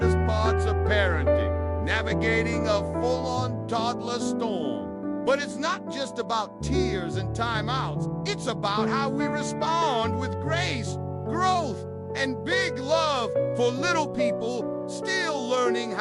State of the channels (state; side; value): identical; both; correlation 1.00